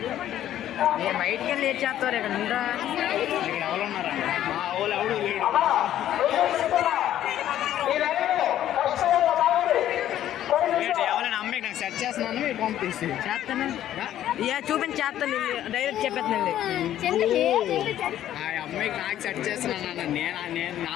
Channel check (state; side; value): quieter; right; 12.0 dB